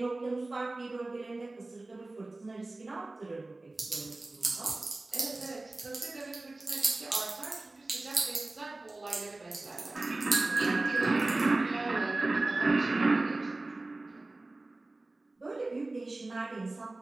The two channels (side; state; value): left; quieter; 3.0 dB